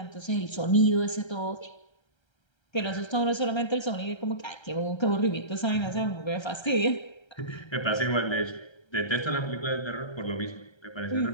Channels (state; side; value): late; right; 1.3 ms